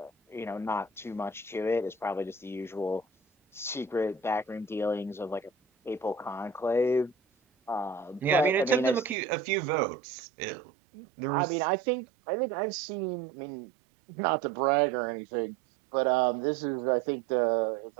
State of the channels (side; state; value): left; drops out; at 9.2 s